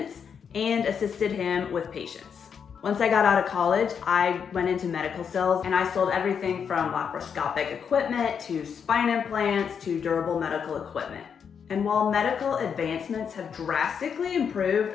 and assisted him with patients. Once I got out of college, I went into medical sales and I sold everything from laparoscopic equipment to spine implants to durable medical equipment. And while medical advancements have drastically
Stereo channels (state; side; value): quieter; right; 7.1 dB